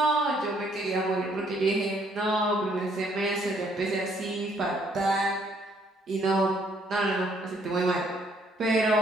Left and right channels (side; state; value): both; normal; correlation 0.66